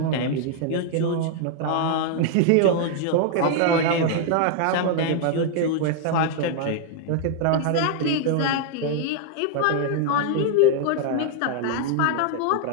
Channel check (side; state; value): both; different; correlation 0.00